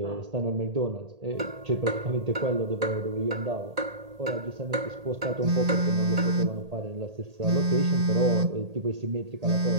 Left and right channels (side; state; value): left; late; 1.8 ms